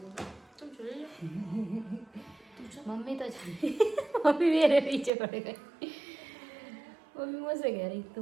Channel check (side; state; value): left; drops out; at 5.1 s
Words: तुम चले जाओ। मम्मी तो मम्मी मेरे पीछे पड़ गई। मम्मी मुझसे कह रही